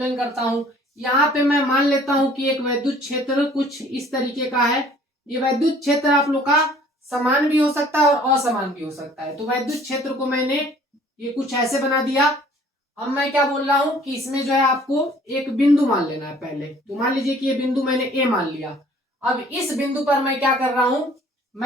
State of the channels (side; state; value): both; normal; correlation 0.54